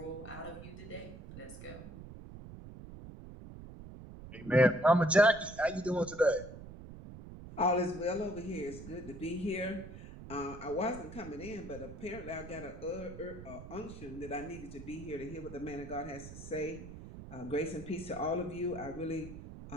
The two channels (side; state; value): right; noise; rumble, 13 dB below the sound